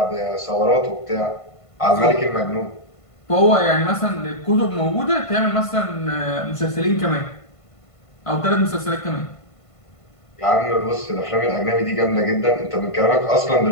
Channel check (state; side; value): late; right; 1.5 ms